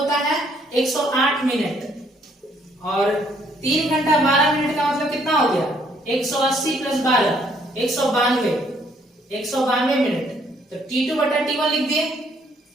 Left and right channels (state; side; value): normal; both; correlation 0.66